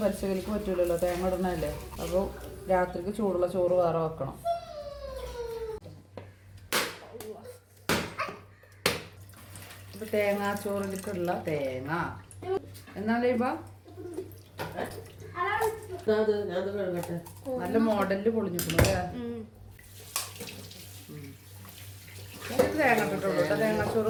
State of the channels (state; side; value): identical; both; correlation 1.00